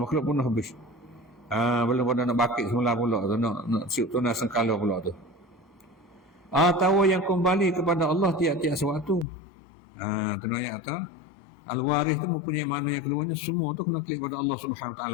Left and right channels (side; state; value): right; drops out; at 9.2 s